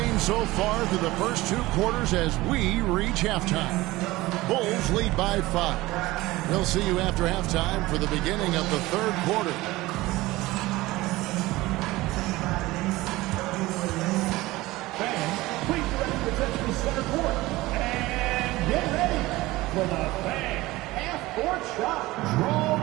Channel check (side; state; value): left; quieter; 19.1 dB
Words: so far through the first 2 quarters as we reach halftime. Bulls lead by 5. We'll see you after halftime for the beginning of the 3rd quarter. Fans, please direct your attention to center court. And get ready for the Fan half-court shot.